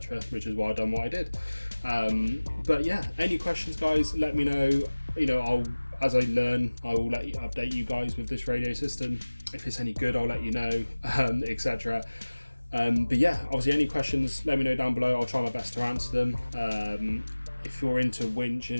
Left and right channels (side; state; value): both; inverted; correlation -1.00